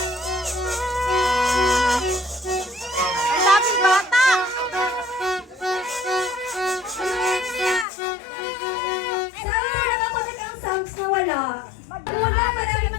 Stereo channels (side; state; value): right; drops out; at 7.9 s